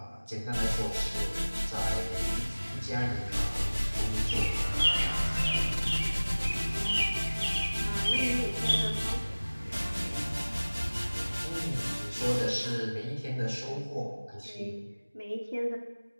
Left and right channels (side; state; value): both; inverted; correlation -1.00